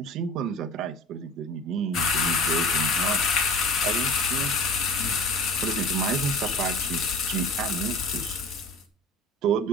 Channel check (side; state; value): both; normal; correlation 0.39